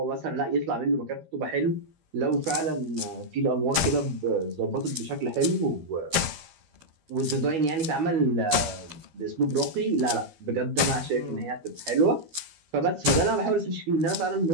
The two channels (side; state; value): left; late; 12 ms